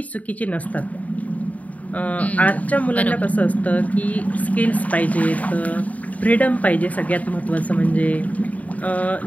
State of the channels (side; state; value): right; late; 0.071 ms